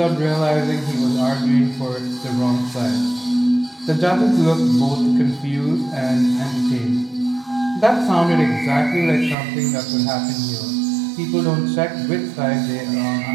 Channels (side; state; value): left; drops out; at 9.3 s